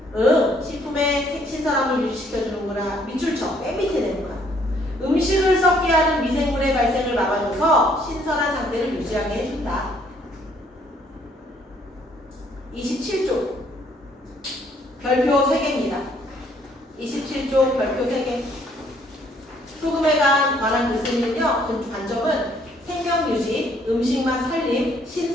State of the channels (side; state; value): both; normal; correlation 0.65